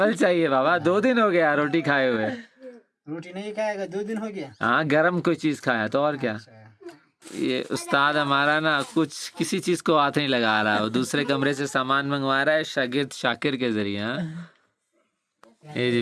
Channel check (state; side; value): identical; both; correlation 1.00